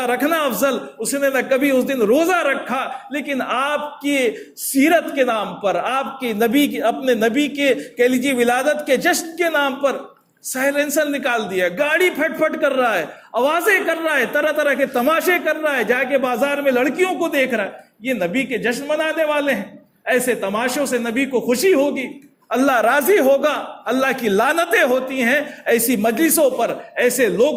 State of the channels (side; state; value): both; identical; correlation 1.00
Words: رکھنا افضل، اس نے نہ کبھی اس دن روزہ رکھا، لیکن آپ کی سیرت کے نام پر، آپ کے نبی کے، اپنے نبی کے کہہ لیجیے ولادت کے جشن کے نام پر سائلنسر نکال دیا، گاڑی پھٹ پھٹ کر رہا ہے، آوازیں کر رہا ہے، طرح طرح کے تماشے کر رہا ہے، جا کے بازار میں لڑکیوں کو دیکھ رہا ہے۔ یہ نبی کے جشن منانے والے ہیں، ایسے تماشوں سے نبی کو خوشی ہوگی، اللہ راضی ہوگا، اللہ کی لعنتیں ہوتی ہیں ایسی مجلسوں پر، ایسے